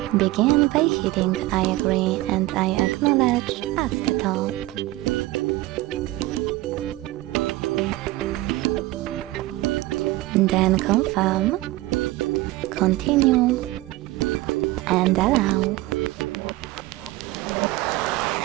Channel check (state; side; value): quieter; left; 18.5 dB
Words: Begin by hitting I agree and I acknowledge at the top. Then confirm, continue, and allow.